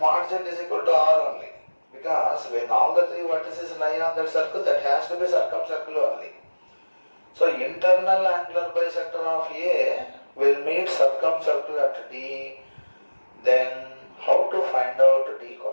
Z is equal to R only. Because when all the three vertices lie on that circle, that has to be circumcircle only. So internal angular bisector of A will meet circumcircle at D. Then how to find out D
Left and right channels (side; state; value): both; inverted; correlation -1.00